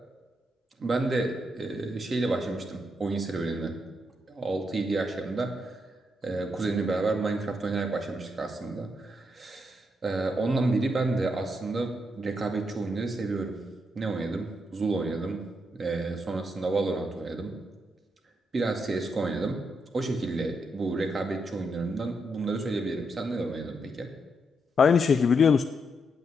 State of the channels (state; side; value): normal; both; correlation 0.80